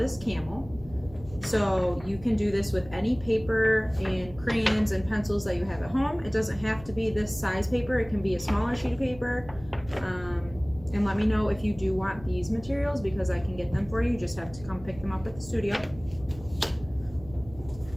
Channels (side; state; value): right; noise; hum, 18 dB below the sound